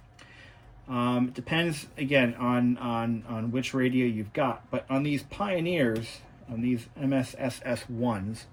It depends again on which radio you've got. But on these Pioneers, on these MSSS1s,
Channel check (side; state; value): both; identical; correlation 1.00